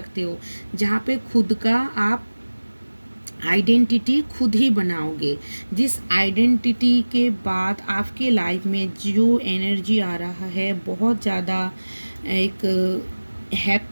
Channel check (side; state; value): both; inverted; correlation -1.00